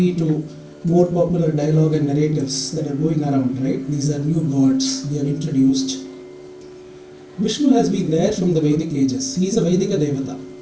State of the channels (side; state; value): both; identical; correlation 1.00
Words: to more popular dialogue and narratives that are going around, right? These are new gods we have introduced. Vishnu has been there from the Vedic ages. He is a Vedika Devata.